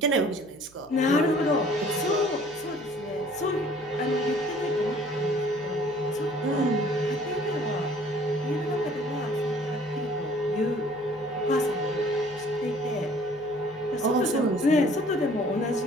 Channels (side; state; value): right; noise; hum, 27 dB below the sound